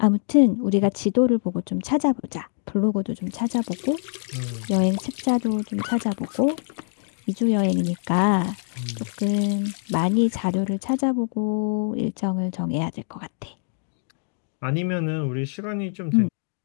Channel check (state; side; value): silent; right; digital silence